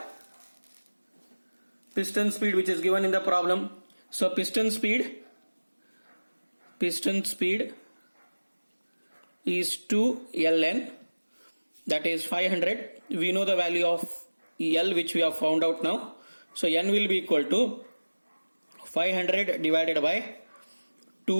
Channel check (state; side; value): inverted; both; correlation -1.00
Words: piston speed which is given in the problem. So piston speed is 2 ln, that is 500. We know the value of L which we have found out now. So N will be equal to 500 divided by